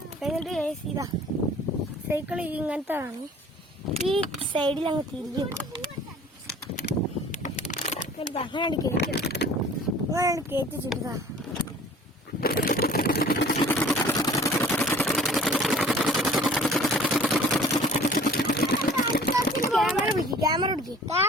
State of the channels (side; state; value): both; normal; correlation 0.48